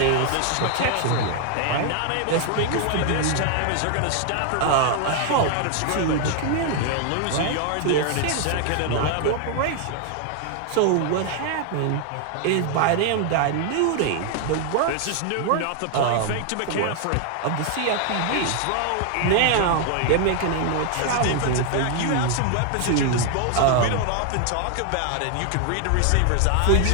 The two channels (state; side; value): different; both; correlation 0.00